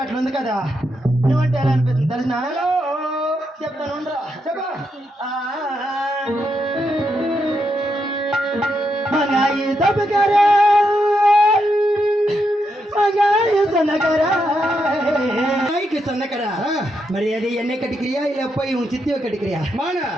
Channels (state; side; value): normal; both; correlation 0.82